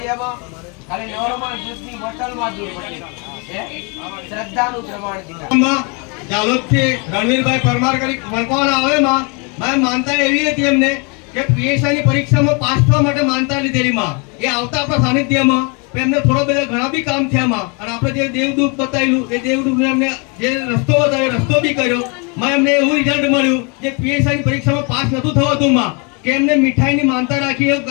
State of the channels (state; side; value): quieter; right; 33.0 dB